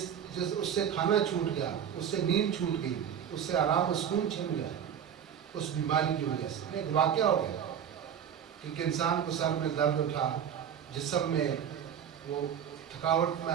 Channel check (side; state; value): left; quieter; 8.6 dB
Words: اس سے کھانا چھوٹ گیا، اس سے نیند چھوٹ گئی، اس سے آرام و سکون چھن گیا اس بیماری کی وجہ سے. ایک واقعہ ہو گیا کہ ایک انسان کو سر میں درد اٹھا، جسم میں وہ تھکاوٹ